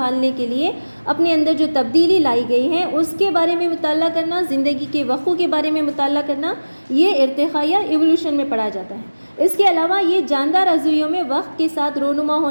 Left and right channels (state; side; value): inverted; both; correlation -1.00